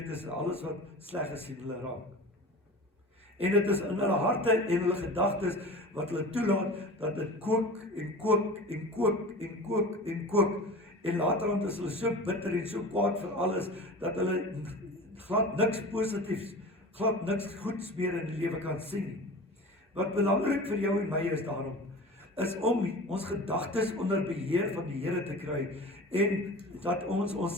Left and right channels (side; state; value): both; normal; correlation 0.36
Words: is en alles wat sleg is, sien hulle raak. En dit is in hulle harte en hulle gedagtes wat hulle toelaat dat dit kook en kook en kook en kook en kook, en laterand is hulle so bitter en so kwaad vir alles dat hulle glad niks positiefs, glad niks goeds meer in die lewe kan sien. Wat belangrik vir jou en my is daarom, is om ons gedagtes onder beheer van die Here te kry, en dat ons